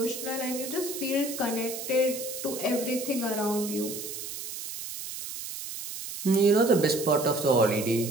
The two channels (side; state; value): right; noise; hiss, 8 dB below the sound